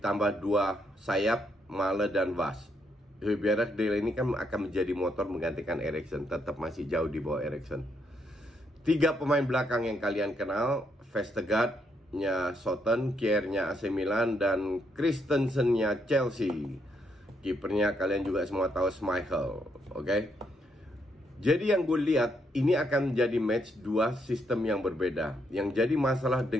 2 sayap, Male dan Vas. Højbjerg, Delaney kan akan menjadi motor menggantikan Eriksen, tetap masih jauh di bawah Eriksen. 3 pemain belakang yang kalian kenal, Vestergaard-nya Southampton, Kjaer-nya AC Milan, dan Christensen-nya Chelsea. Kipernya kalian juga semua tahu, Schmeichel. Oke? Jadi yang gue lihat, ini akan menjadi match 2 sistem yang berbeda. Yang jadi masalah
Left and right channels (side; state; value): both; normal; correlation 0.76